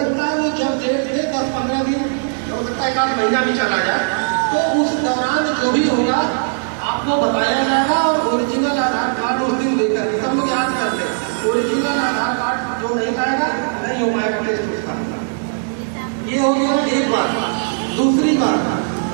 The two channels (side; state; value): left; silent; digital silence